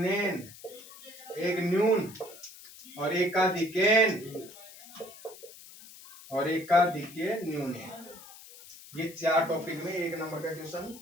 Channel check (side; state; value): left; noise; hiss, 18 dB below the sound